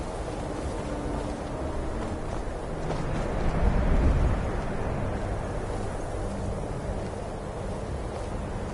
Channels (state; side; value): identical; both; correlation 1.00